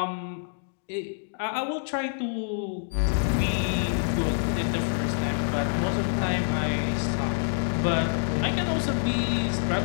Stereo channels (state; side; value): silent; right; digital silence